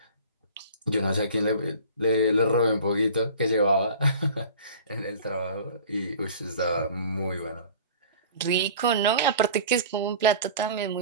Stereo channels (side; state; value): both; inverted; correlation -0.42